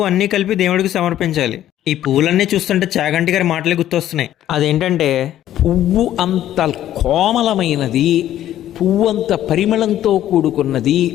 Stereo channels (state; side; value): quieter; right; 12.3 dB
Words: అన్నీ కలిపి దేవుడికి సమర్పించాలి. ఈ పువ్వులన్నీ చూస్తుంటే చాగంటి గారి మాటలే గుర్తొస్తున్నాయి. అదేంటంటే, పువ్వు అంత కోమలమైనది, పువ్వంత పరిమళంతో కూడుకున్నది,